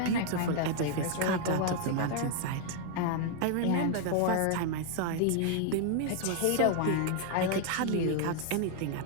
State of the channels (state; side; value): different; both; correlation 0.00